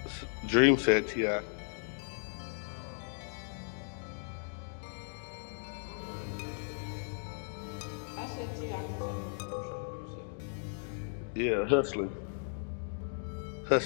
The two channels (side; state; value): right; silent; digital silence